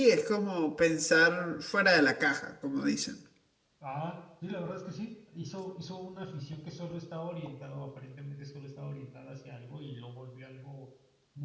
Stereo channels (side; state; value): both; identical; correlation 1.00